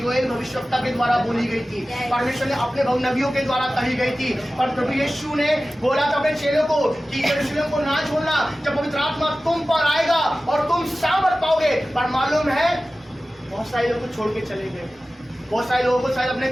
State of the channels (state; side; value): normal; both; correlation 0.96